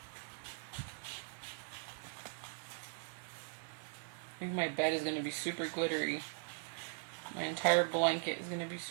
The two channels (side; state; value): left; silent; 51 dB below the other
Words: I think my bed is going to be super glittery. My entire blanket is going to be